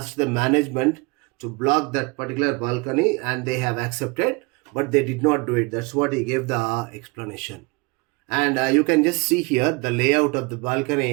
the management to block that particular balcony and they have accepted, but they did not do it. That's what he gave the explanation. And you can just see here the layout of the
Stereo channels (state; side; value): quieter; left; 27.7 dB